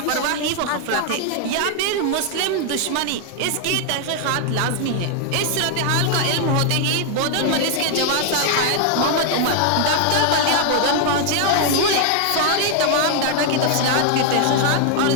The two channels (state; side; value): different; both; correlation 0.00